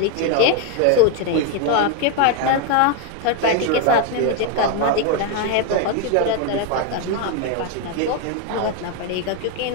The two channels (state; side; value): different; both; correlation 0.01